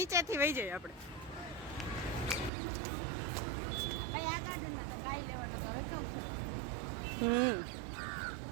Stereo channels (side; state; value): left; drops out; at 2.5 s